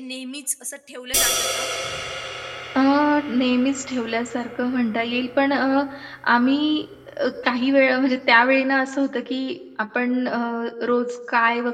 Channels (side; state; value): both; identical; correlation 1.00